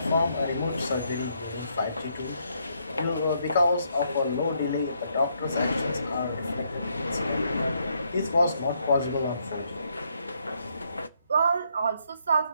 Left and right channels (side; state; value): both; inverted; correlation -0.74